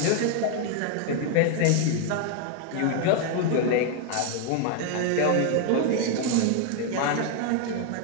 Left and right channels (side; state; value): both; different; correlation 0.00